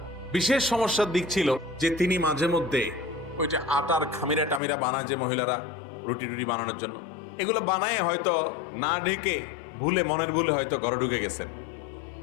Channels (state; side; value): drops out; right; at 4.6 s